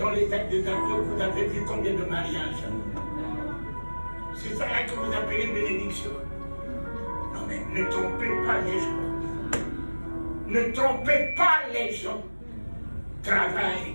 les actes des apôtres, vous avez vu combien de mariages? C'est ça que vous appelez bénédiction. Non mais ne trompez pas les gens. Ne trompez pas les gens.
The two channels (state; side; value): inverted; both; correlation -1.00